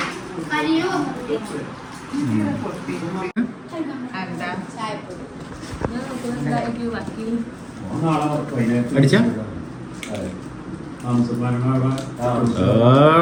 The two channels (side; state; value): both; identical; correlation 1.00